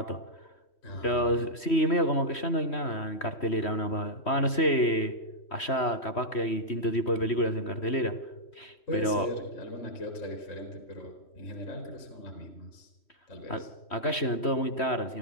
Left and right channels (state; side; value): late; right; 3.1 ms